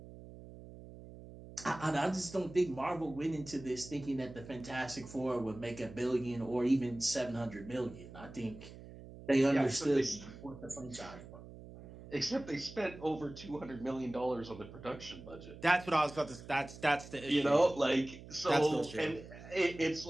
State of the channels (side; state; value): right; noise; hum, 16 dB below the sound